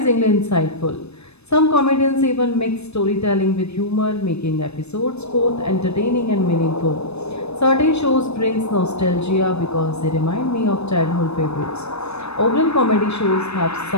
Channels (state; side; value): late; right; 0.80 ms